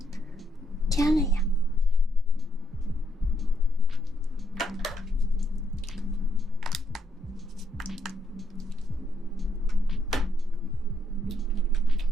加了呀。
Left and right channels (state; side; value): normal; both; correlation 0.76